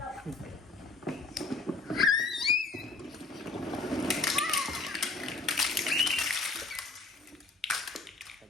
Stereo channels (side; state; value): right; quieter; 3.5 dB